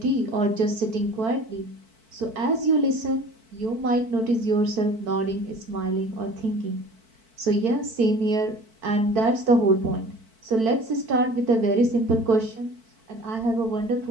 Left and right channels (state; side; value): late; left; 4.5 ms